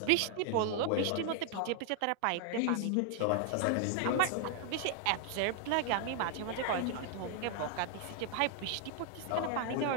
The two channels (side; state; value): both; different; correlation 0.00